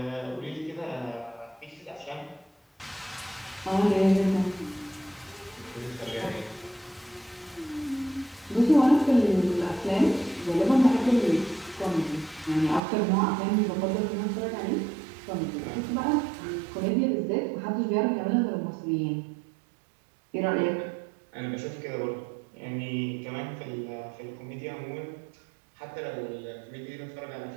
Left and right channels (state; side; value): drops out; left; at 12.8 s